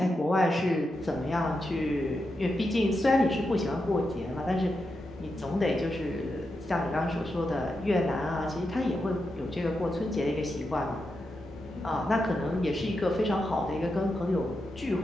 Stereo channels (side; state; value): both; normal; correlation 0.87